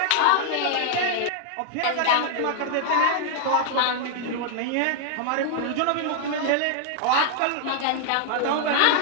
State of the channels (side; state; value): both; different; correlation 0.00